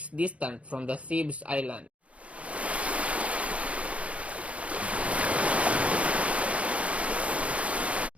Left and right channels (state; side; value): late; left; 0.063 ms